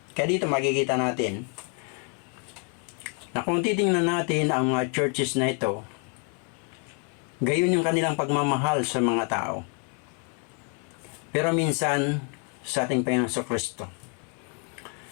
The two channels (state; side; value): quieter; right; 38.5 dB